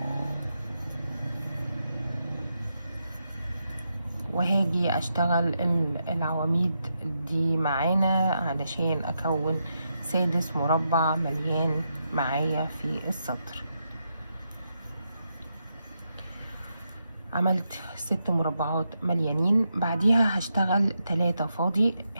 وهاجي اشتغل العواميد دي معانا علشان اكون 6 مربع مليان معايا في السطر. عملت 6 مربعات مليانين. بعديها هشتغل 3 فاضي،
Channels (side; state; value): both; inverted; correlation -0.83